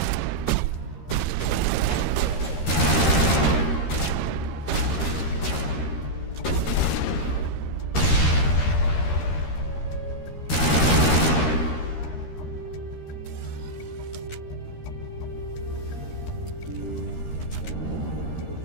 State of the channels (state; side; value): late; right; 13 ms